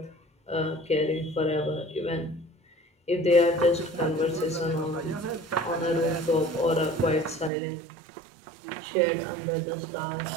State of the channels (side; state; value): left; drops out; at 7.5 s